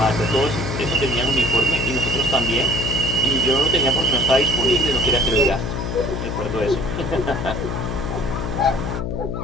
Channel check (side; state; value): left; noise; hum, 3 dB below the sound